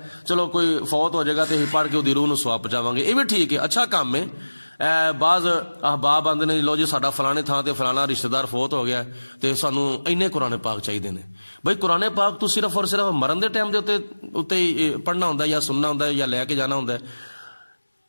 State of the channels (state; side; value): inverted; both; correlation -1.00